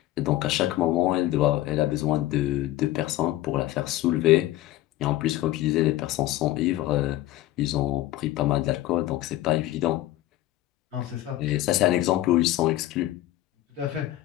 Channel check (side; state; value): right; quieter; 15.1 dB